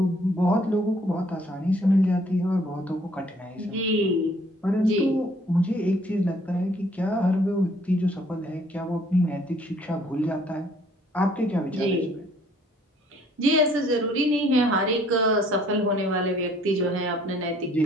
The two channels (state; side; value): normal; both; correlation 0.61